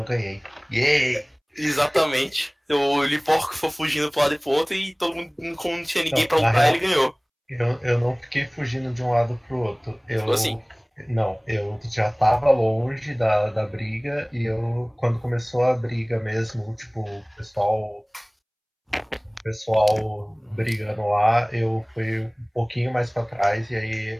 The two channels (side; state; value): both; identical; correlation 1.00